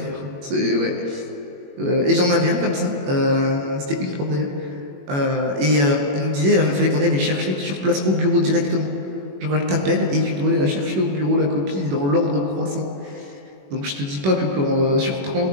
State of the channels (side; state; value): left; late; 21 ms